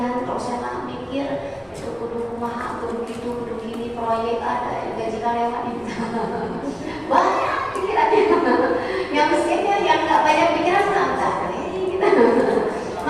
Kalau saya nggak mikir itu kudu kumaha, kudu gitu, kudu gini, proyek ada, gaji karyawan itu banyak pikirannya. Yang miskinnya yang nggak banyak pikiran enggak gitu.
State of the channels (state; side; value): identical; both; correlation 1.00